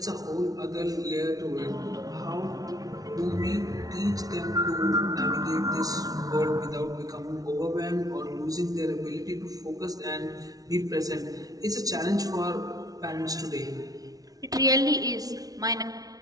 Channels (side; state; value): left; late; 0.18 ms